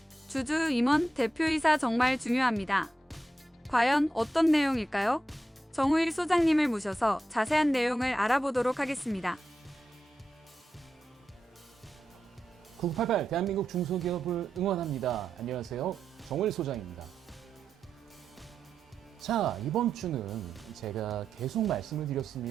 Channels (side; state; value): both; normal; correlation 0.88